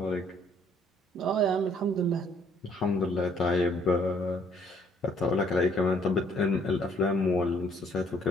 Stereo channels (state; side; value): normal; both; correlation 0.64